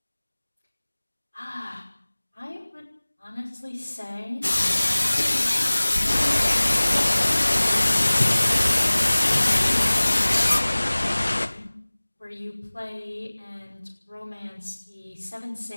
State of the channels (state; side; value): inverted; both; correlation -1.00